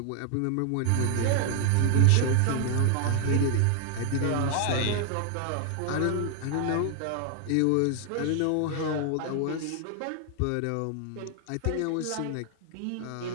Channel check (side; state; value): both; different; correlation 0.00